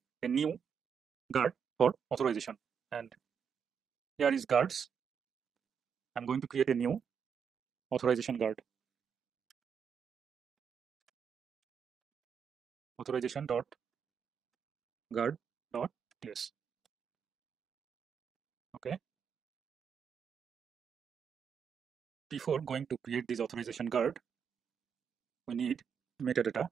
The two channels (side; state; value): left; quieter; 7.0 dB